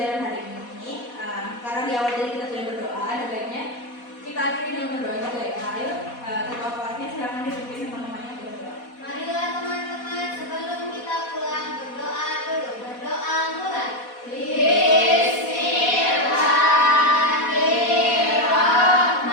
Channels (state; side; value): late; right; 4.1 ms